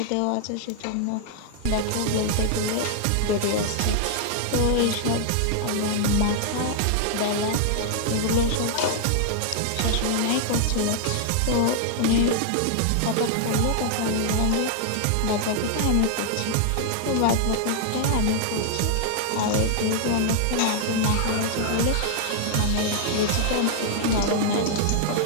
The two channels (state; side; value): different; both; correlation 0.00